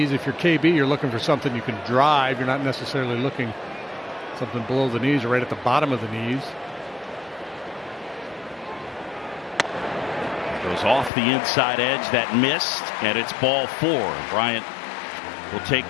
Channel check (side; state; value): right; drops out; at 11.1 s